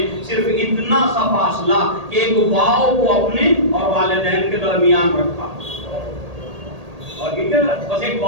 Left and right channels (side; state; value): left; late; 1.8 ms